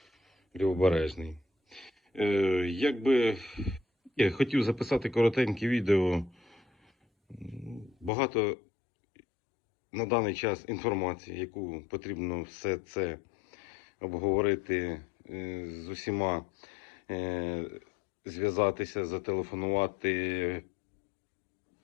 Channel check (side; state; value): right; drops out; at 8.1 s